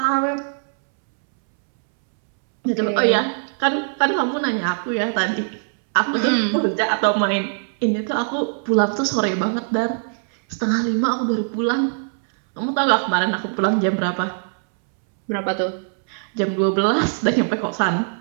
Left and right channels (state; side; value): silent; left; 65 dB below the other